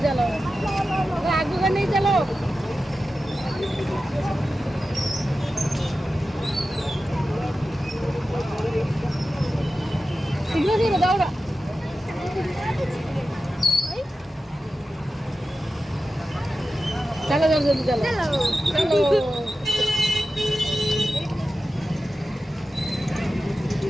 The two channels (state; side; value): normal; both; correlation 0.93